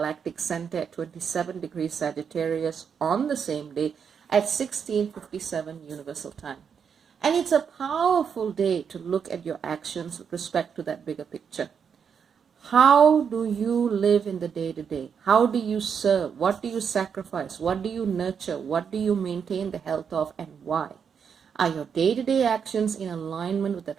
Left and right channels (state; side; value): quieter; left; 6.9 dB